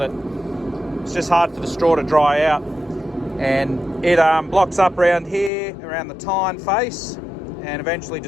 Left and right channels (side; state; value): right; drops out; at 5.5 s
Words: that it's just hard for the straw to dry out, and it blocks up around here, around the tine face, and eventually